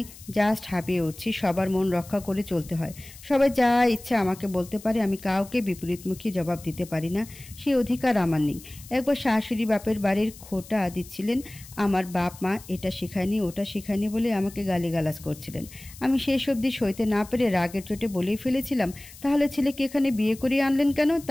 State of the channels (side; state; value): left; noise; hiss, 19 dB below the sound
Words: জাস্ট হাঁপিয়ে উঠছি। সবার মন রক্ষা করে চলতে হয়। সবাই যা ইচ্ছা আমাকে বলতে পারে, আমি কাউকে বিপরীতমুখী জবাব দিতে পারি না, সেই অধিকার আমার নেই। একবার শাশুড়ি বাপের বাড়ির খোটা দিচ্ছিলেন। আমার বাপ মা এটা শেখায়নি, ওটা শেখায়নি বলে আমাকে গালিগালাজ করছিলেন। আমি শেষ অবধি সইতে না পেরে রাগের চোটে বলেই ফেলেছিলাম, তাহলে ছেলেকে এখানে বিয়ে করিয়ে আনলেন কেন?